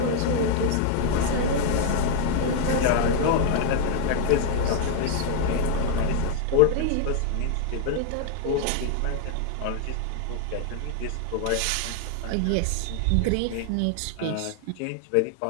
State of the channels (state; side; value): different; both; correlation 0.00